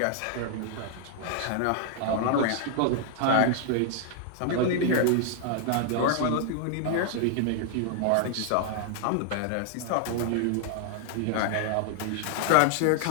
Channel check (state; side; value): different; both; correlation 0.00